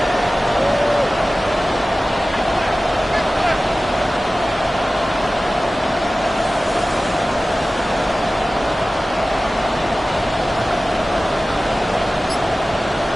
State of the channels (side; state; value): both; normal; correlation 0.96